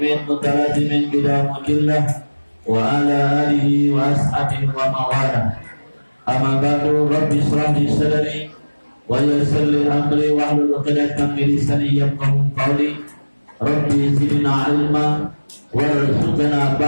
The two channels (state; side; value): inverted; both; correlation -1.00